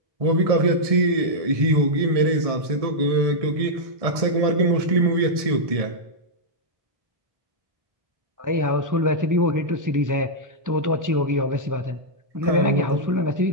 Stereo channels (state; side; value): late; left; 1.6 ms